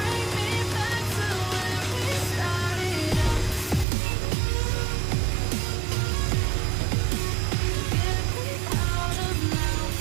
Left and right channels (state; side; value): drops out; left; at 3.9 s